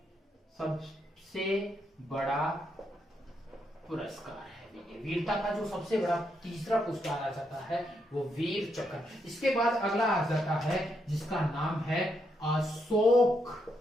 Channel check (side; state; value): both; normal; correlation 0.79